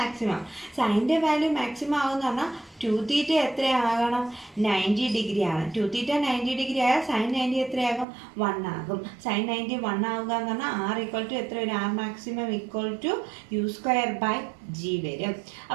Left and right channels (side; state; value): left; drops out; at 8.1 s